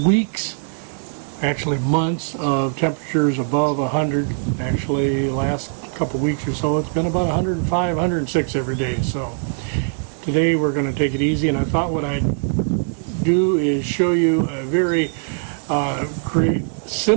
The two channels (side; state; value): left; silent; digital silence